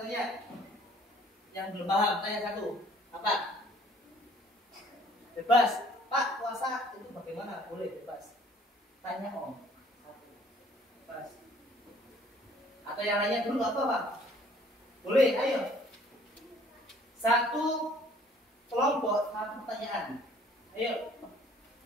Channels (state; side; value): normal; both; correlation 0.57